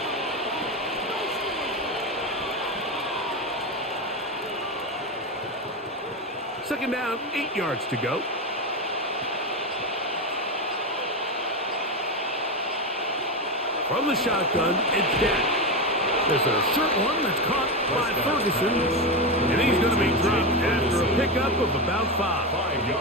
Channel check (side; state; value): both; normal; correlation 0.15